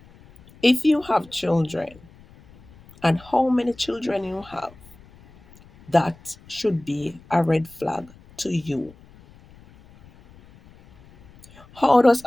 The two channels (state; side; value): noise; left; rumble, 25 dB below the sound